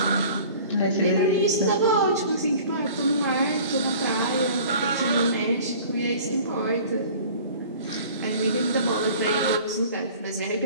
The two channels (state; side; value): inverted; both; correlation -0.46